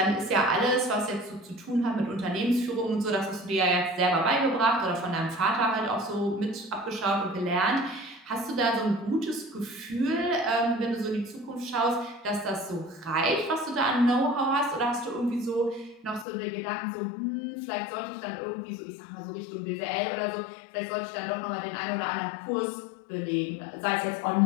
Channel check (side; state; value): right; drops out; at 16.2 s